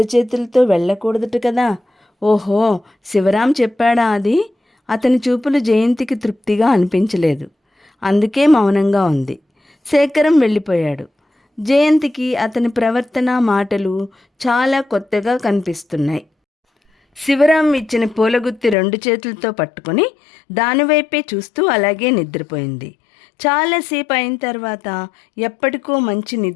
చేతులతో వెళ్ళకూడదట కదా. ఓహో, శివరాం చెప్పాడా అది? అతని చూపులు జయంతికి తృప్తిగా అనిపించలేదు. అందుకే మౌనంగా ఉంది. శేఖరం వెళ్ళిపోయాడు. జయంతికి అతని ప్రవర్తన, మాటలు చాలా కొత్తగా కనిపిస్తున్నాయి. శివరాం ఇచ్చిన పూలగుత్తి 2 చేతులతో పట్టుకొని దానివైపే చూస్తూ అలాగే నిద్రపోయింది. చాలాసేపు అయిన తర్వాత ఎప్పటికో మంచి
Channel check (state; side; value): drops out; right; at 18.8 s